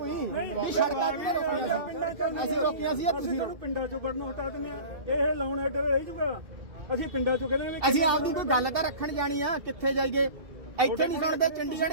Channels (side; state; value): left; late; 2.7 ms